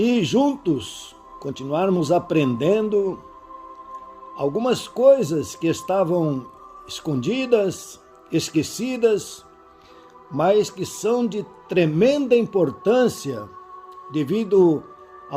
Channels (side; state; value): both; identical; correlation 1.00